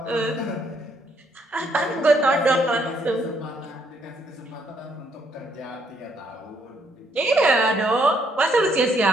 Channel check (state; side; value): normal; both; correlation 0.71